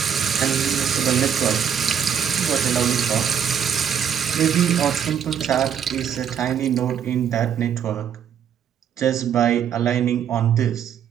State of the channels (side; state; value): left; quieter; 8.4 dB